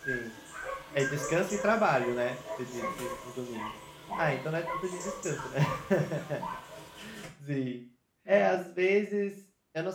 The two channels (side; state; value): both; identical; correlation 1.00